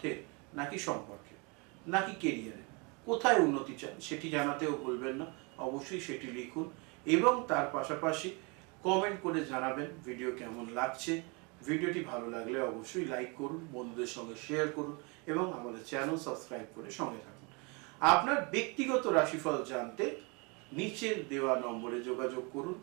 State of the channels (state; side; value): quieter; left; 30.6 dB